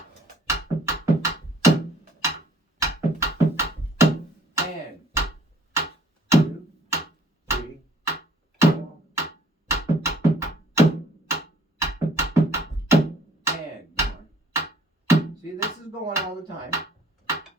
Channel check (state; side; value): normal; both; correlation 0.58